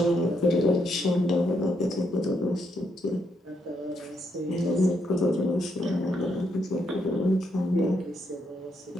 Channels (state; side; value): normal; both; correlation 0.77